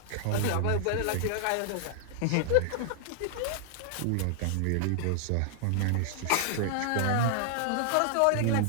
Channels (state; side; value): different; both; correlation 0.00